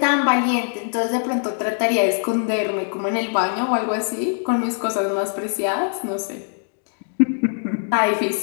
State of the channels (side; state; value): right; silent; 63 dB below the other